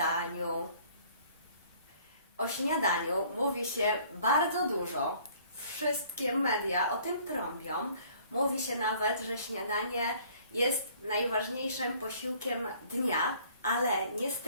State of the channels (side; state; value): both; inverted; correlation -0.56